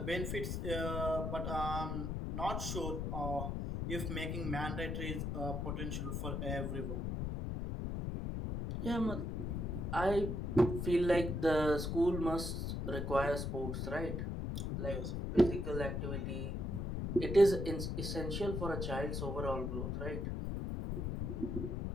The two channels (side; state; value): left; noise; rumble, 2 dB below the sound